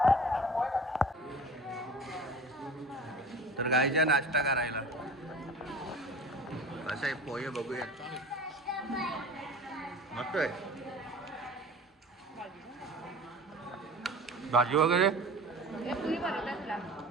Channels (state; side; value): normal; both; correlation 0.39